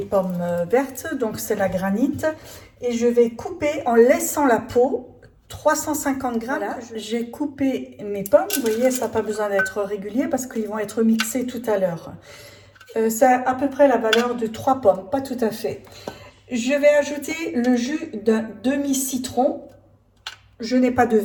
pommes vertes, donc c'est la granite, et je vais couper en laissant la peau 350 grammes. Voilà, j'ai coupé mes pommes, vous voyez, ça n'a pas besoin d'être régulier parce qu'ils vont être mixés tout à l'heure. Ça a à peu près la valeur de 3 pommes, pas tout à fait. Je vais ajouter le jus d'un demi-citron. Je n'ai pas de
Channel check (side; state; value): both; identical; correlation 1.00